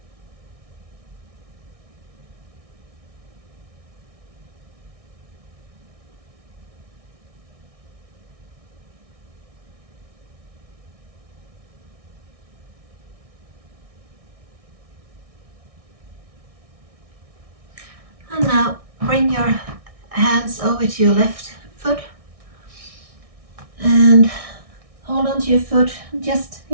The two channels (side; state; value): left; late; 1.6 ms